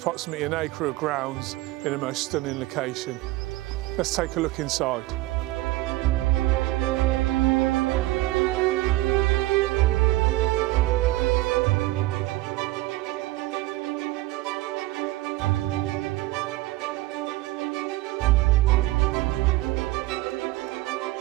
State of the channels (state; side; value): quieter; left; 18.6 dB